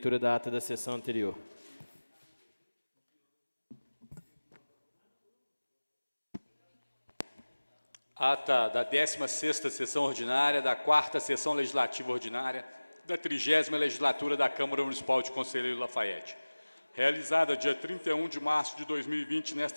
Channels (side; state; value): both; inverted; correlation -1.00